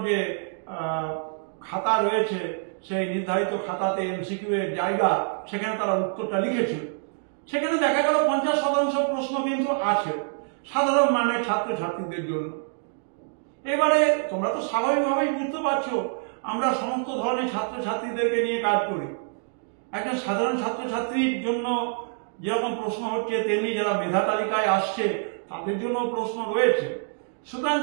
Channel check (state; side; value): silent; left; digital silence